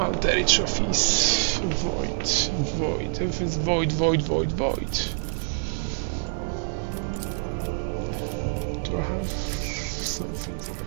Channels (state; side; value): silent; left; 61 dB below the other